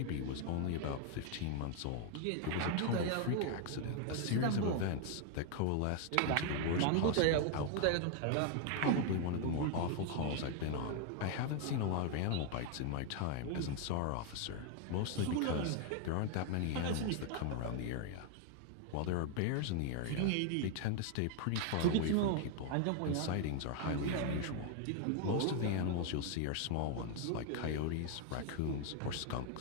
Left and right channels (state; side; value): different; both; correlation 0.00